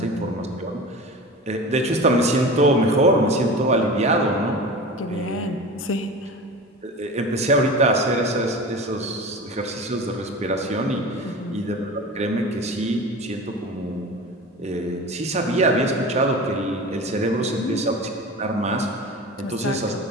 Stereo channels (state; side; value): normal; both; correlation 0.33